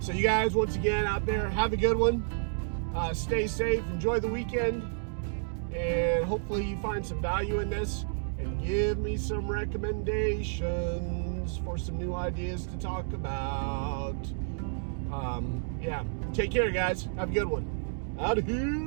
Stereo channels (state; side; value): silent; left; digital silence